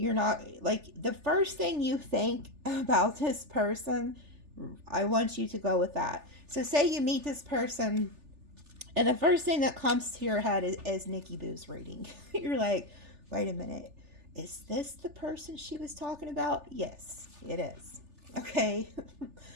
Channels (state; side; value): late; left; 3.4 ms